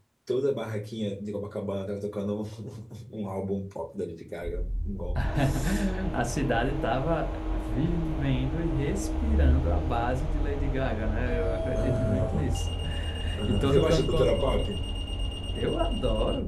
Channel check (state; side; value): identical; both; correlation 1.00